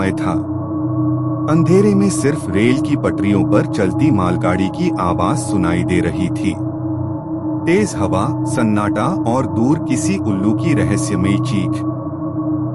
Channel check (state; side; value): identical; both; correlation 1.00